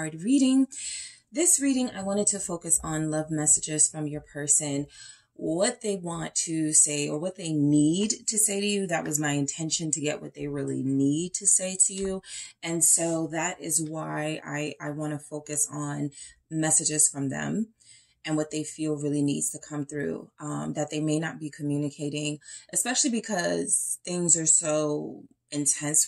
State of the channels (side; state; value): both; identical; correlation 1.00